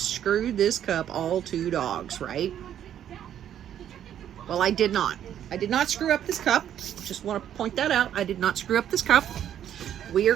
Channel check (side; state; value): left; quieter; 10.3 dB